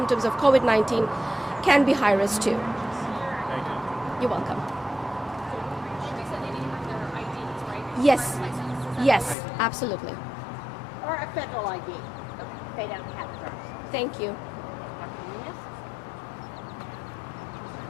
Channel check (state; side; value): drops out; right; at 9.3 s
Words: of COVID-19 can be high risk too. Thank you. You're welcome. Yes. driver's license? Yes, absolutely. Or a federal ID. They don't have a driver's license. Thank you. Dr. Nunez?